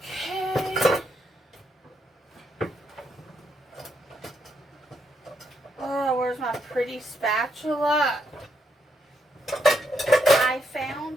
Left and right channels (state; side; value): normal; both; correlation 0.78